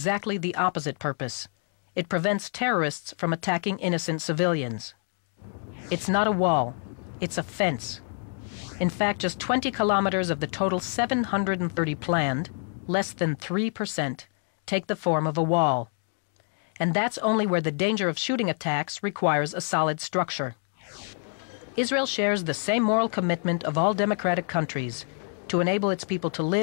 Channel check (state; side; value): quieter; right; 39.6 dB